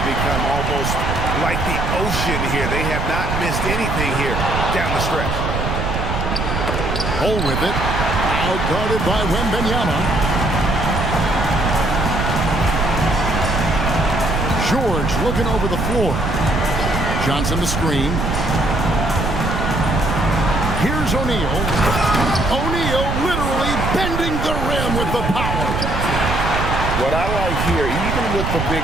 become almost like the ocean here. They have not missed anything here down the stretch. Hole with it. Now guarded by Wembanyama. George looking over the floor. Johnson the screen. Here's O'Neal. O'Neal literally bending the rim with the power. What I like here, even with the big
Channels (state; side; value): noise; right; rumble, 2 dB below the sound